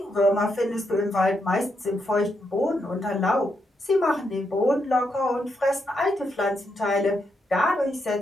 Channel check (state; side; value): normal; both; correlation 0.81